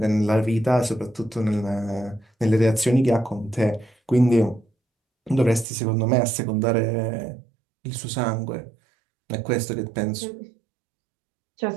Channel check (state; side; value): drops out; left; at 5.7 s